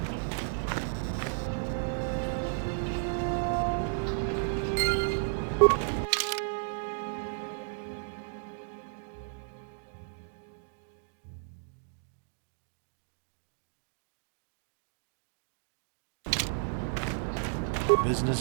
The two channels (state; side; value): silent; left; digital silence